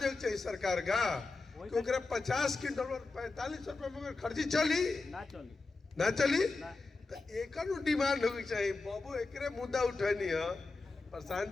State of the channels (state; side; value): quieter; right; 3.7 dB